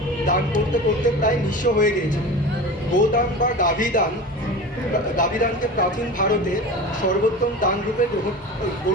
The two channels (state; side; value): normal; both; correlation 0.32